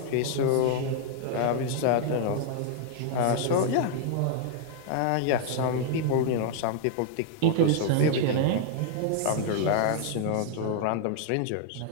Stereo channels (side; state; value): both; different; correlation -0.01